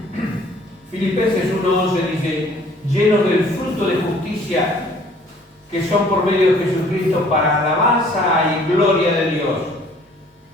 Filipenses 1:11 dice: llenos del fruto de justicia que son por medio de Jesucristo para alabanza y gloria de Dios.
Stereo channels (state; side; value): normal; both; correlation 0.56